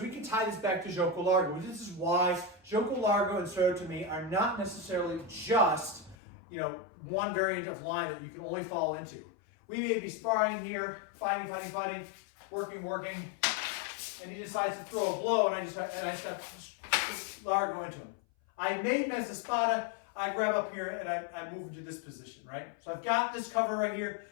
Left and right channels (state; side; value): drops out; right; at 6.2 s